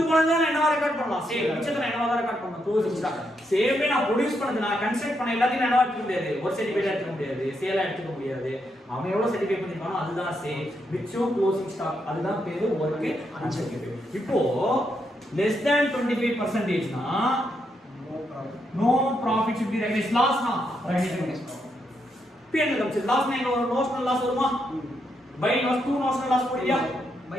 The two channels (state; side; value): normal; both; correlation 0.80